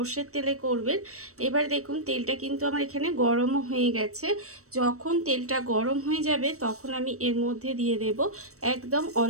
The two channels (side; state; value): left; late; 0.65 ms